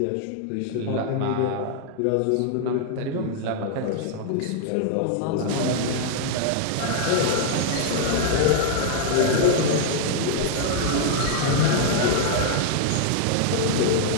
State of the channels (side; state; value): both; different; correlation -0.01